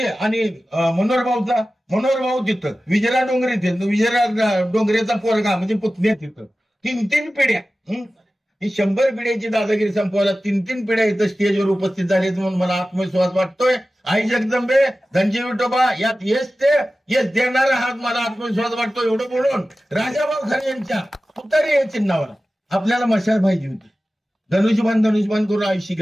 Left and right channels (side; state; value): both; normal; correlation 0.95